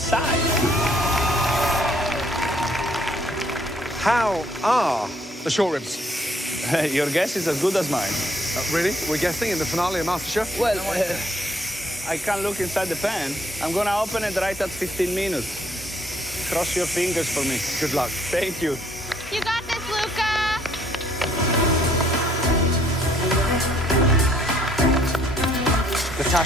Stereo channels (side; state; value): both; normal; correlation 0.65